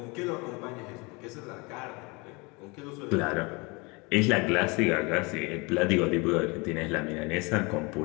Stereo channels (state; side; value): quieter; right; 27.7 dB